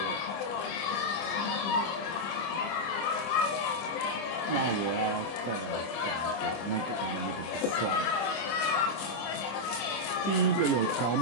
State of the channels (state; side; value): late; right; 25 ms